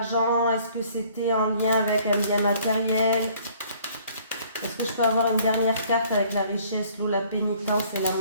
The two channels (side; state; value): both; inverted; correlation -0.58